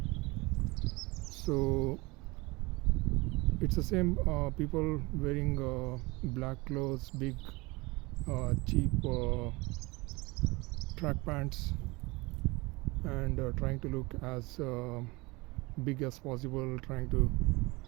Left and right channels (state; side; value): quieter; left; 23.9 dB